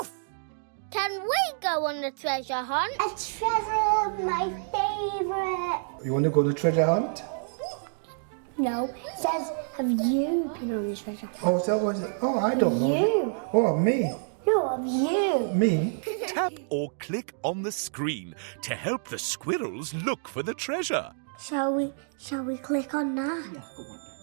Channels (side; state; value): left; silent; digital silence